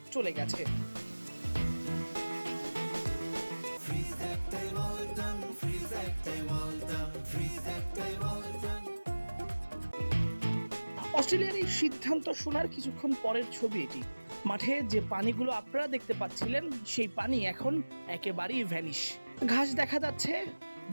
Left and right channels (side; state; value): both; inverted; correlation -1.00